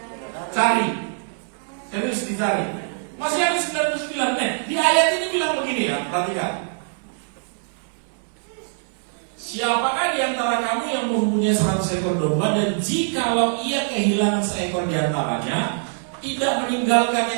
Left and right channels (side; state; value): left; silent; digital silence